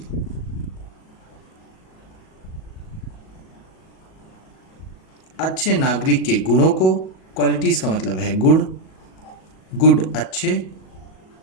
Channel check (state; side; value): late; right; 37 ms